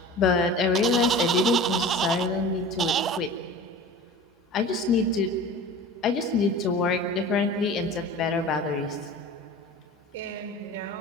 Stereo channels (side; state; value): both; normal; correlation 0.38